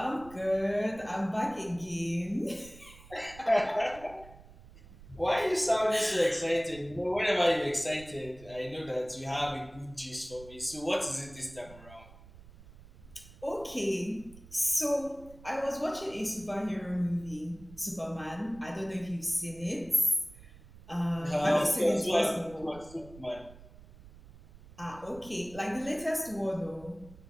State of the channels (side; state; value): right; noise; rumble, 20 dB below the sound